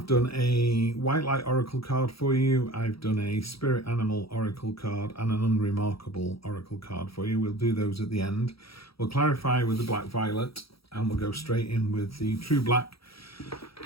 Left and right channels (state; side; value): late; right; 0.76 ms